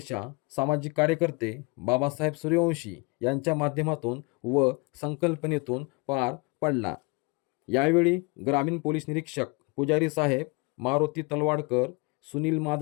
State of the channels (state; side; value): quieter; right; 29.3 dB